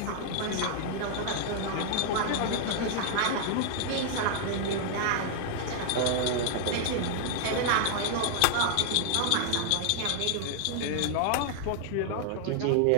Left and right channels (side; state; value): both; different; correlation 0.00